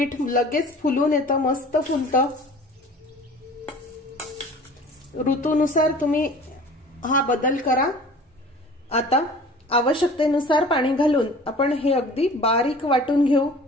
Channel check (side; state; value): both; normal; correlation 0.45